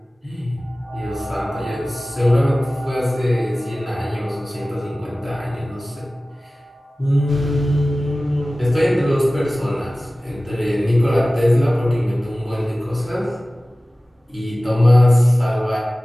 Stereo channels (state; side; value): normal; both; correlation 0.97